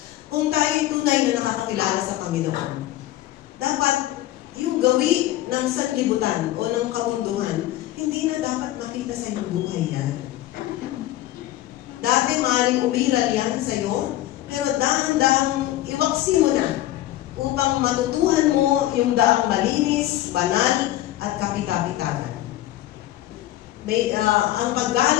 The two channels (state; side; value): quieter; right; 14.7 dB